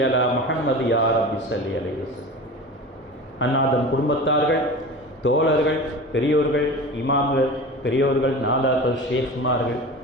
அலா முஹம்மது யா ரப்பி ஸல்லி அலைஹி வஸல்லம். அன்னாதம் குடும்பத்தார்கள், தோழர்கள், பெரியோர்கள், இமாம்கள், பெரியோர்கள், நாதாக்கள், ஷேக்மார்கள்,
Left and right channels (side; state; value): both; normal; correlation 0.33